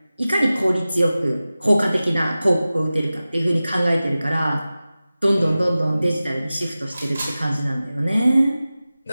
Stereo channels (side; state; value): both; inverted; correlation -0.96